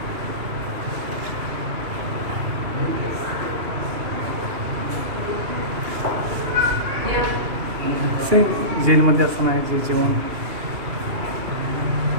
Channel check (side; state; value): left; late; 2.8 ms